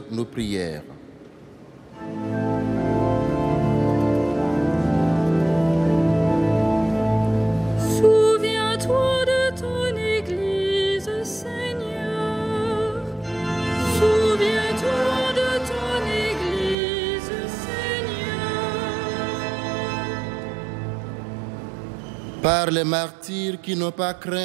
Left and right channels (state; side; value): drops out; left; at 16.8 s